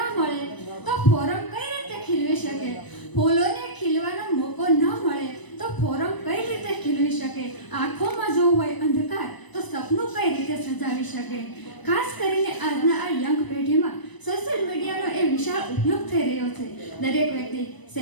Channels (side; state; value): right; late; 1.0 ms